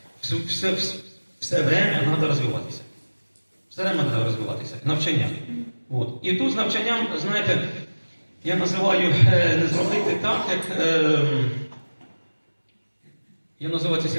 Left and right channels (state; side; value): inverted; both; correlation -1.00